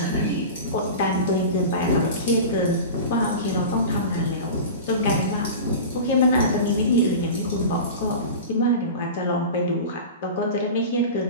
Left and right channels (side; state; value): both; inverted; correlation -0.31